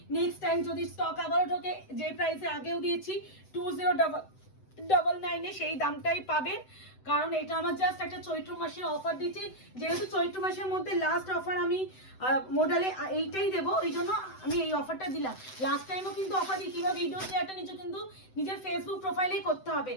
নেক্সট টাইম যদি স্টক আবারও ঢোকে, যে প্রাইসে আগেও দিয়েছি 2099 সেই দামটাই পাবেন, কারণ এটা আমার জাস্ট একটা চৈত্র মাসের অফার দিচ্ছি। যেহেতু চৈত্র মাসের মধ্যে লাস্ট অফার আমি মডেলে এইটাই দেবো, এই জন্য আমি এই অফারটা দিলাম। লাস্ট টাইমও কিন্তু অফার দিই, কিংবা ভিডিও শেয়ারটা নিচে কিন্তু নিজের ফেসবুক প্রোফাইলেই করতে হবে।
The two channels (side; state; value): right; late; 7.9 ms